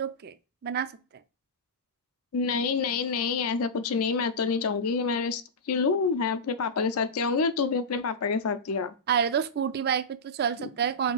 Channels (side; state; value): both; normal; correlation -0.14